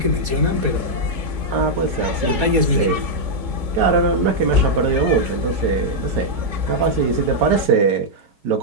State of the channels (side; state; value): left; late; 4.2 ms